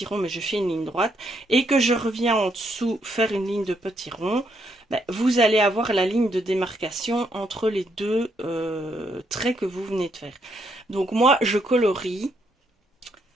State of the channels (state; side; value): normal; both; correlation 0.75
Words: ronds, mais je fais une ligne droite, et que je reviens en dessous faire une ligne de petits ronds, ben, vous allez avoir la ligne de démarcation entre les deux traits que vous venez de faire. Donc moi, je colorie